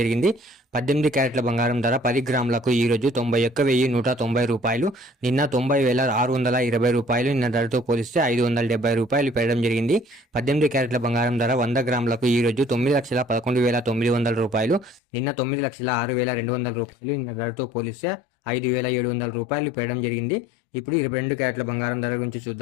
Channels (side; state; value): right; drops out; at 15.0 s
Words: జరిగింది. 18 క్యారెట్ల బంగారం ధర 10 గ్రాములకు ఈ రోజు 91,190 రూపాయలు, నిన్న 90,620 రూపాయలు. నిన్న ధరతో పోలిస్తే 570 రూపాయలు పెరగడం జరిగింది. 18 క్యారెట్ల బంగారం ధర 100 గ్రాములకు ఈ రోజు 9,11,900 రూపాయలు, నిన్న 9,06,200 రూపాయలు. నిన్న ధరతో పోలిస్తే 5,700 రూపాయలు పెరగడం జరిగింది. ఇప్పుడు 22 క్యారెట్ల బంగారం ధర గురించి